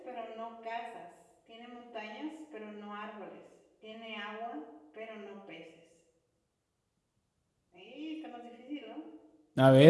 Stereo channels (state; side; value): identical; both; correlation 1.00